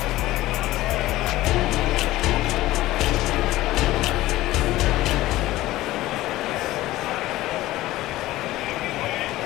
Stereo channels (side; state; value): right; quieter; 16.7 dB